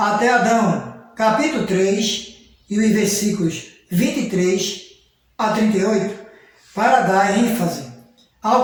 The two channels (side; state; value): both; identical; correlation 1.00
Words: Adão, capítulo 3, e os versículos 23 a 38, para dar ênfase